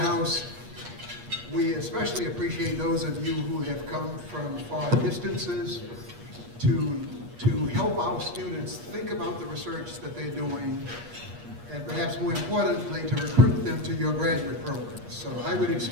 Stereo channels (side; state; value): left; late; 8.4 ms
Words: We especially appreciate those of you who have come from far distances to help our students think about the research that they're doing, and perhaps more importantly, to recruit them to your graduate programs. So I would